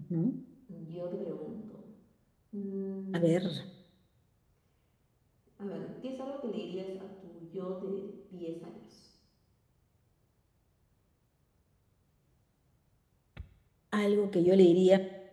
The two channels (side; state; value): both; identical; correlation 1.00